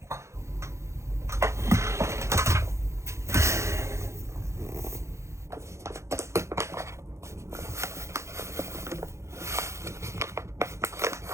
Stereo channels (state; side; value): late; left; 0.14 ms